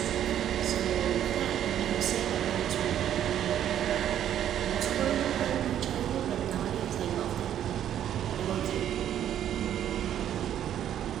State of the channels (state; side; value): quieter; left; 10.6 dB